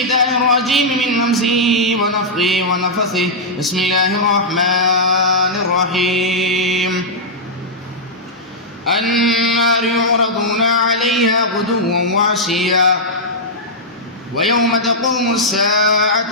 الرجيم من همزه ونفخه ونفثه. بسم الله الرحمن الرحيم. النار يعرضون عليها غدوا وعشيا ويوم تقوم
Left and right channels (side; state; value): both; normal; correlation -0.08